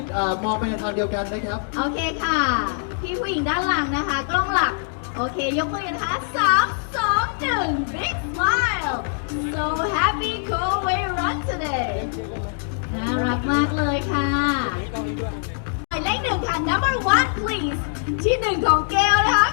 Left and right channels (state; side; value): silent; right; digital silence